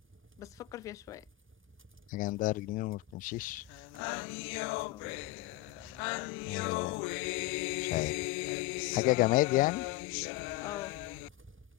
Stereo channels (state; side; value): quieter; right; 18.9 dB